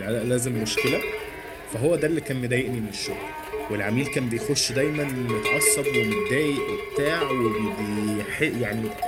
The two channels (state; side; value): identical; both; correlation 1.00